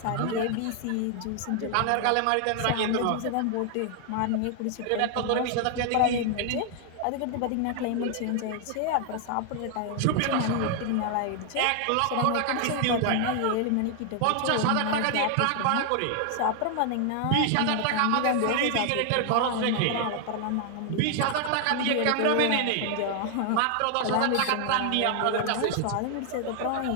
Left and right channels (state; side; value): different; both; correlation 0.00